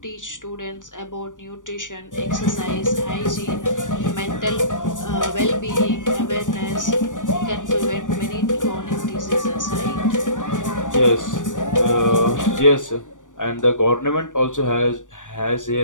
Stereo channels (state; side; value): late; right; 0.87 ms